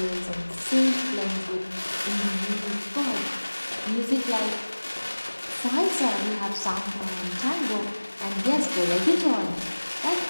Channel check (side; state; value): both; inverted; correlation -1.00